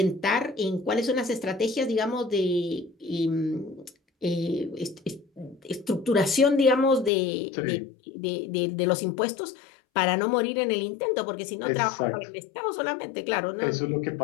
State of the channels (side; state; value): right; drops out; at 7.1 s